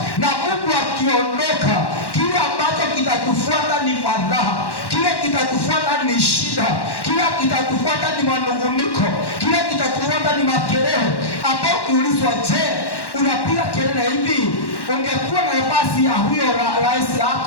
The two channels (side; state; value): right; late; 1.1 ms